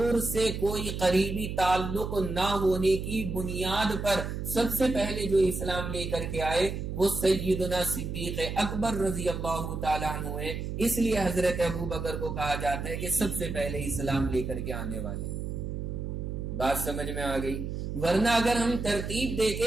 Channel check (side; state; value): right; noise; hum, 5 dB below the sound